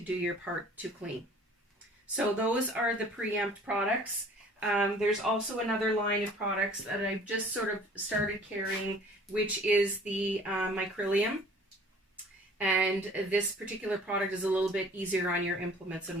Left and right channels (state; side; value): normal; both; correlation 0.51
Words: do your part to clean. So those are the Preempt products. There's also another line of products that I've just sort of started carrying, which is the Micrylium. And this particular product is a little bit easier on your implements